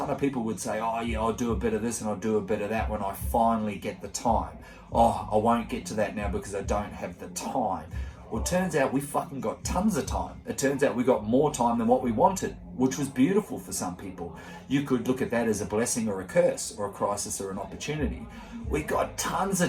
of people would say, oh yeah, I'll do a bit of this and I'll do a bit of that when I finally get the time. Oh, I won't get to that now because I don't have the time. Well, it turns out we fucking got tons of time. It turns out we got more time than what we wanted, which was beautiful for some people. You could look at that as a blessing or a curse or a crisis or an opportunity. We got tons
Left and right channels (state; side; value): identical; both; correlation 1.00